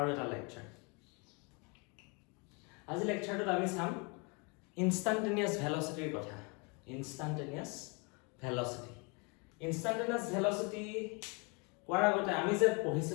এটা lecture. আজি lectureটোত আমি চাম instantaneous velocity কথা. Instantaneous velocity. Instantaneous velocity কোৱাৰ আগতে আমি যে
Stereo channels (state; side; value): quieter; right; 32.0 dB